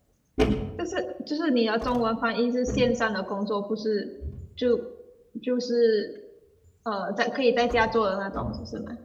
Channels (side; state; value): both; identical; correlation 1.00